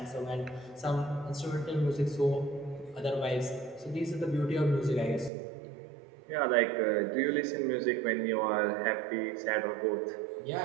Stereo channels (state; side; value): drops out; left; at 5.3 s